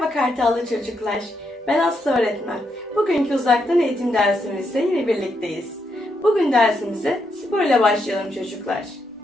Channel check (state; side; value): normal; both; correlation 0.80